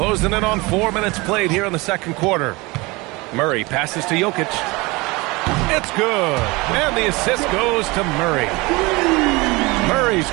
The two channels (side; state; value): left; quieter; 23.9 dB